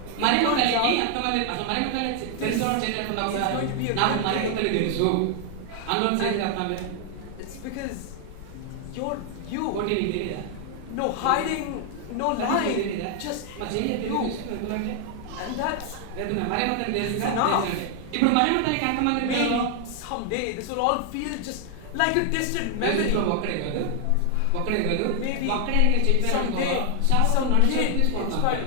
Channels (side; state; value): both; different; correlation 0.00